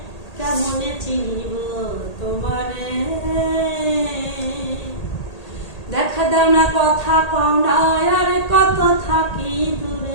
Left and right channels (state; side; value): late; right; 1.8 ms